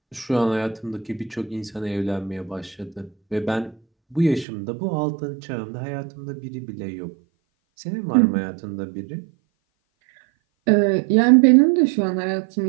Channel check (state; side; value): drops out; left; at 4.5 s